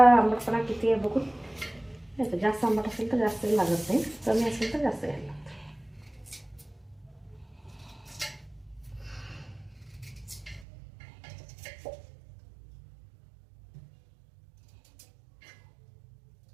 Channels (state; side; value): drops out; left; at 10.7 s